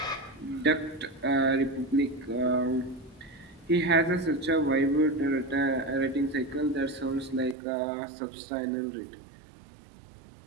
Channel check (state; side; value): drops out; left; at 7.6 s